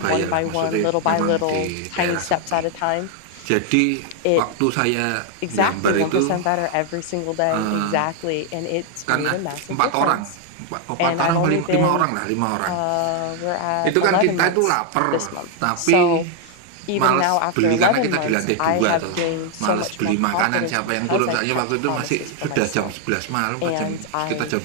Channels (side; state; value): both; different; correlation 0.00